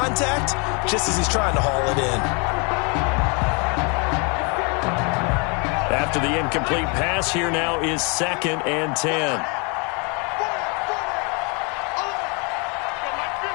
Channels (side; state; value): right; quieter; 32.9 dB